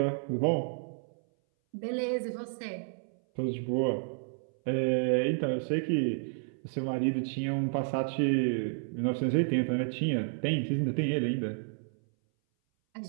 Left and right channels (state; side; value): silent; left; 57 dB below the other